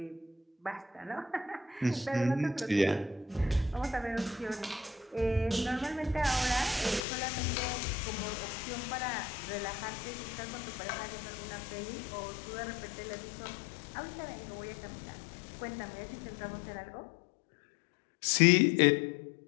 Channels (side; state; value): right; drops out; at 7.0 s